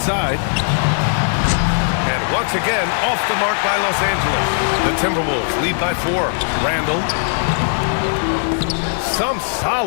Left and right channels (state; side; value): silent; right; digital silence